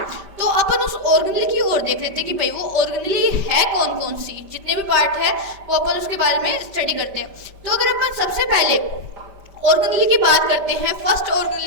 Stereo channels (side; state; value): left; late; 5.1 ms